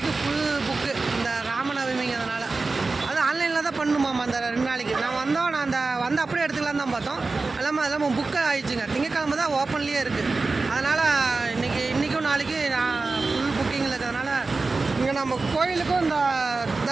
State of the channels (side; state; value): left; quieter; 3.8 dB